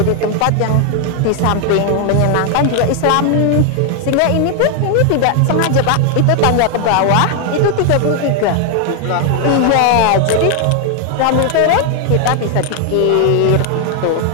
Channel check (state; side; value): different; both; correlation 0.00